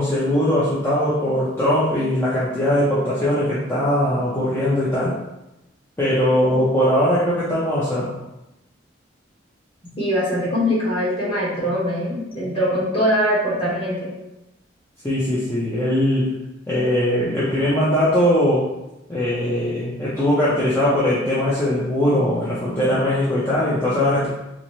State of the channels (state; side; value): normal; both; correlation 0.48